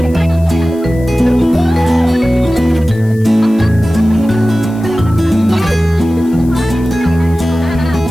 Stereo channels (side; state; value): left; noise; hiss, 26 dB below the sound